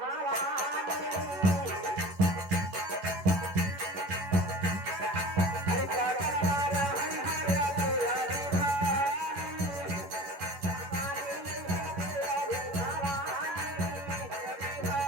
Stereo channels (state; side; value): late; left; 11 ms